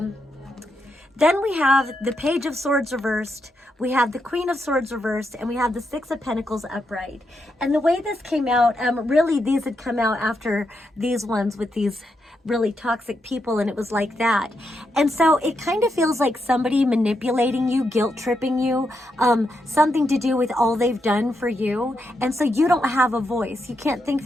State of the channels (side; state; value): both; normal; correlation 0.83